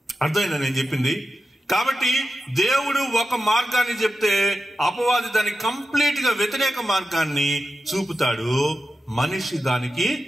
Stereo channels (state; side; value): normal; both; correlation 0.91